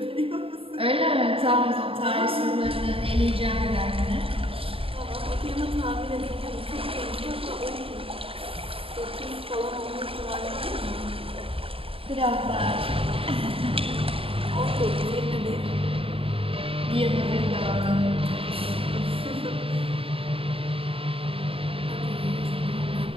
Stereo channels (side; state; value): left; late; 0.27 ms